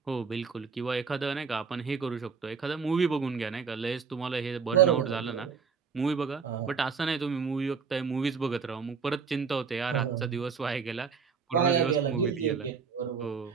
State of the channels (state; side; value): quieter; left; 5.7 dB